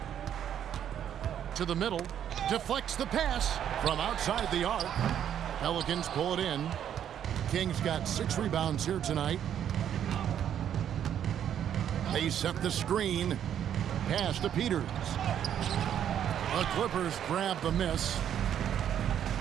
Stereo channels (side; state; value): left; quieter; 9.7 dB